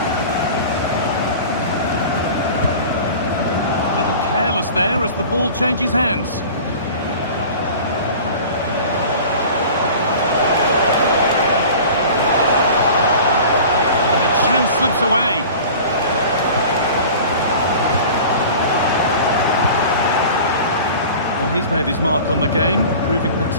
A little careless there as the ball changes hands. Slips away. Well, he's made his mark on the game, proving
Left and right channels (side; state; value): both; inverted; correlation -0.40